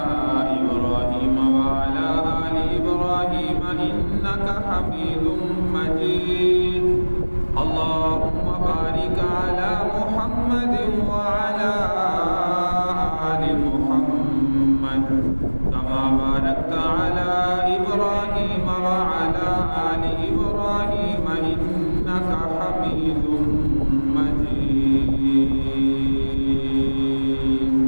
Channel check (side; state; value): both; inverted; correlation -1.00